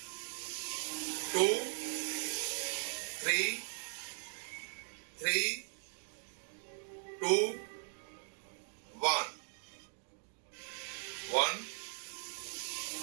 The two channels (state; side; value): silent; left; 52 dB below the other